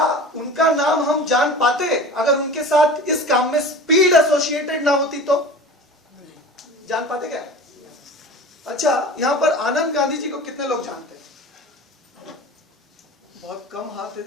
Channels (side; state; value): both; normal; correlation 0.37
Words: उनका नाम हम जान पाते अगर उनके साथ इस काम में स्पीड एसोसिएटेड ना होती तो? जान पाते क्या? अच्छा, यहां पर आनंद गांधी जी को कितने लोग जानते हैं? बहुत कम हाथ है